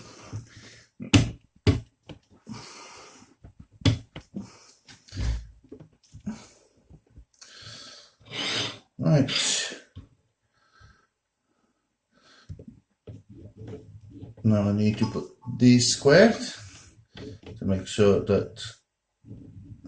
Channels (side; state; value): both; identical; correlation 1.00